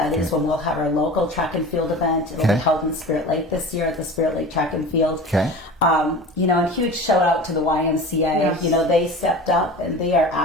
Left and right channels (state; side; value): normal; both; correlation 0.35